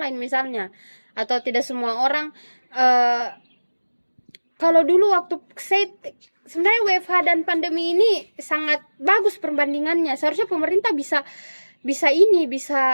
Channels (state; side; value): inverted; both; correlation -1.00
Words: misalnya, atau tidak semua orang kalau dulu waktu sebenarnya WFH dan pandemi ini sangat bagus perbandingannya. Seharusnya pemerintah bisa